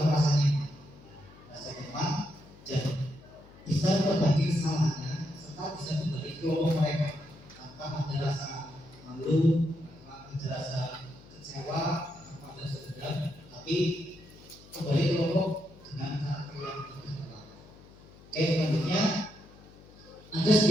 merasa nyaman, dan bisa berbagi kesalahannya serta bisa kembali ke kelompok mereka tanpa ada rasa malu, tanpa ada rasa kecewa, tanpa ada dendam, tapi kembali ke kelompok dengan karakter yang berbeda. Oke, selanjutnya ada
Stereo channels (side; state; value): left; noise; hum, 22 dB below the sound